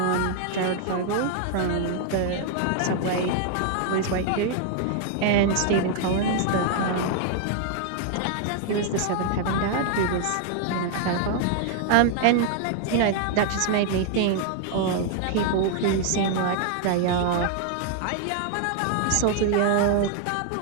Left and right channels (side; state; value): both; different; correlation 0.00